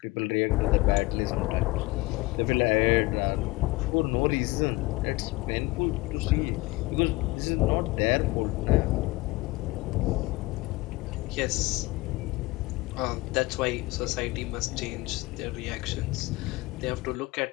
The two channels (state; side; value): quieter; right; 21.7 dB